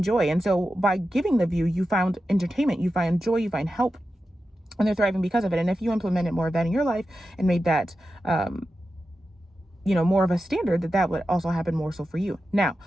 joy. And so by giving the view, you found entertainment, you find joy, you find help, and they're thriving because of it. And if you implemented more of that in your life and made that, more of a standard, that would also happen more so for you. Now,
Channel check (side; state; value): both; normal; correlation 0.91